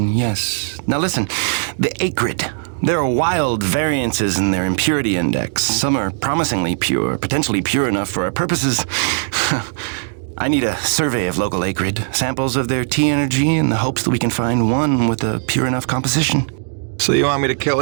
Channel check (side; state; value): left; silent; digital silence